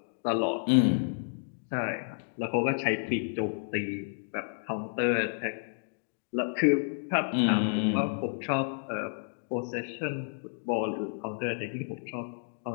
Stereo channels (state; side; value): silent; right; digital silence